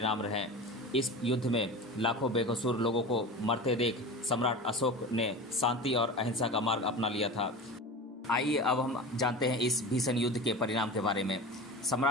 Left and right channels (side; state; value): both; normal; correlation 0.31